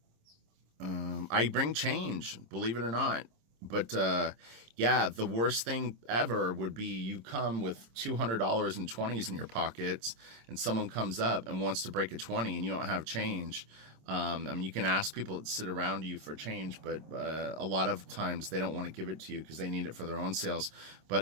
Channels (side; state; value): left; late; 26 ms